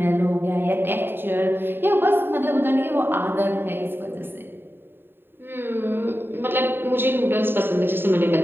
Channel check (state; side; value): late; left; 0.10 ms